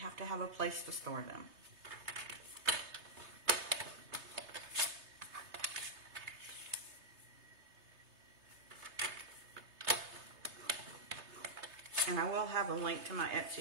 to have a place to store them. And I will have a link to my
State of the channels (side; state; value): left; late; 3.3 ms